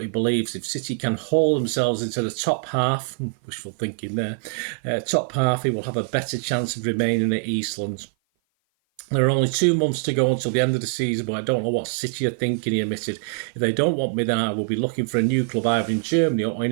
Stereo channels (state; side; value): silent; left; 55 dB below the other